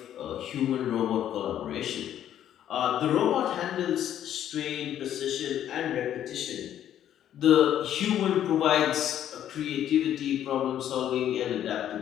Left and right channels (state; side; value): quieter; right; 10.8 dB